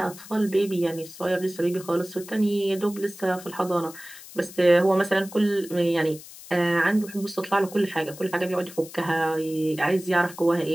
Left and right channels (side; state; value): left; noise; hiss, 17 dB below the sound